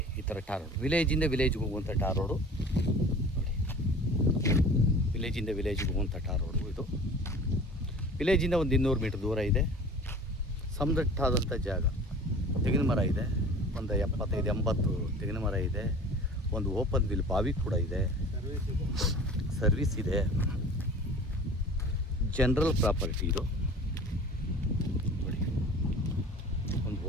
ಈ ಥರ ಟಾರ್ ರೋಡ್, ವಿಲೇಜಿಂದ ವಿಲೇಜ್ಗೆ ಹೋಗುವಂಥ ಟಾರ್ ರೋಡು ನೋಡಿ. ವಿಲೇಜಿಂದ ವಿಲೇಜ್ಗೆ ಹೋಗುವಂಥ ಟಾರ್ ರೋಡು ಇದು. ವಿಲೇಜಿಂದ ಒಂದು 200 ಮೀಟ್ರ್ ದೂರ ಇದೆ. ಸಮದಟ್ಟಾದಂಥ ಜಾಗ. ತೆಂಗಿನ ಮರ ಇದೆ, ಒಂದು 75-80 ತೆಂಗಿನ ಮರ ಇದೆ. ಒಂದು ಓಪನ್ ವಿಲ್ ಬಾವಿ ಕೂಡ ಇದೆ, ಸರ್ವಿಸ್ ಇದೆ. ಜನರಲ್ ಪ್ರಾಪರ್ಟಿ ಇದು ನೋಡಿ. ಒಂದು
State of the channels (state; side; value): normal; both; correlation 0.42